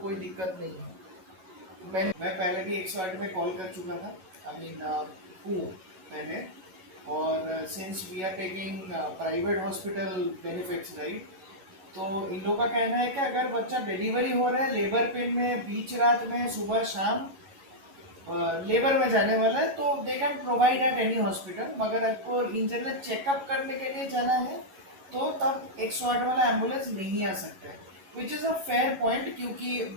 कोई दिक्कत नहीं है। मैं पहले भी 108 में कॉल कर चुका था, आई मीन हूँ पहले। और since we are taking private hospital benefits right, तो इन लोगों का कहना है कि अगर बच्चा डिलीवरी हो रहा है लेबर पेन में, बीच रात में, सुबह शाम लेबर में जाने वाला है, तो they can provide at any hospital. मगर आपको इन जनरल चेकअप करने के लिए जाना है, तो तब 108 वाला एम्बुलेंस नहीं आ सकता है, which is a fair point,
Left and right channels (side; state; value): left; late; 11 ms